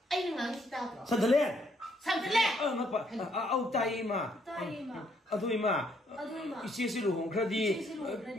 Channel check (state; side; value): normal; both; correlation 0.70